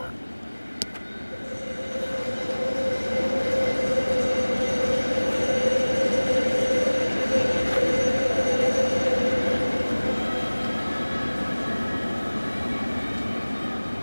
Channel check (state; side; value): inverted; both; correlation -1.00